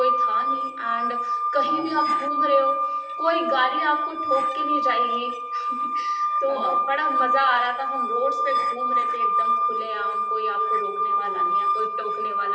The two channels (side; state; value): both; identical; correlation 1.00